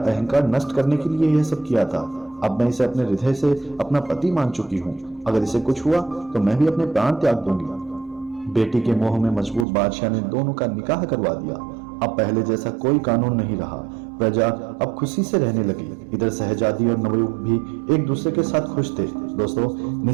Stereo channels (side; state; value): left; drops out; at 9.7 s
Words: नष्ट करने के लिए यह सब किया था। अब मैं इसे अपने हृदय से अपना पति मान चुकी हूँ। अगर इसे कुछ हुआ तो मैं भी अपने प्राण त्याग दूंगी। बेटी के मोह में मजबूर बादशाह ने दोनों का निकाह करवा दिया। अब पहले जैसा कोई कानून नहीं रहा। प्रजा अब खुशी से रहने लगी। इधर शहजादी और नवयुवक भी एक दूसरे के साथ खुश थे। दोस्तों,